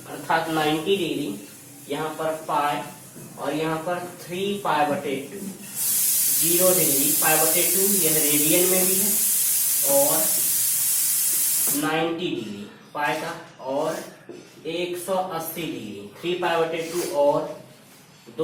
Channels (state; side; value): identical; both; correlation 1.00